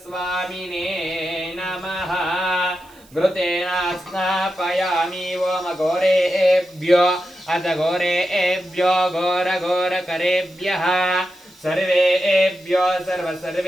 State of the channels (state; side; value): noise; right; hiss, 27 dB below the sound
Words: स्वामिने नमः। घृतेन स्नापयामि। ओम घोरेभ्यो अथ घोरेभ्यो घोरघोरकरेभ्यः सर्वेभ्यो